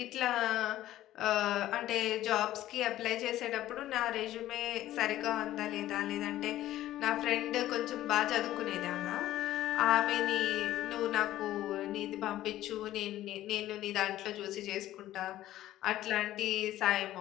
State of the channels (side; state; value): right; quieter; 14.1 dB